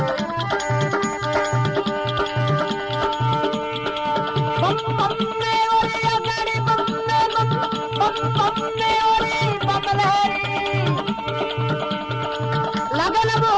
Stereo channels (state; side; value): identical; both; correlation 1.00